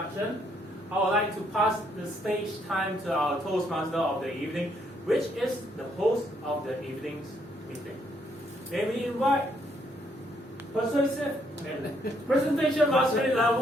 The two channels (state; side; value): normal; both; correlation 0.71